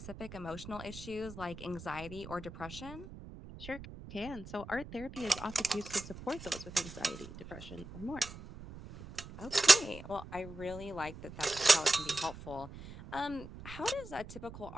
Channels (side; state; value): right; noise; rumble, 14 dB below the sound